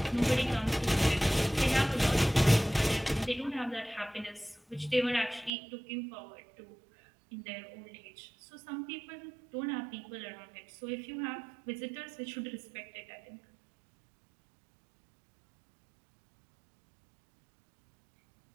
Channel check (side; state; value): left; drops out; at 5.5 s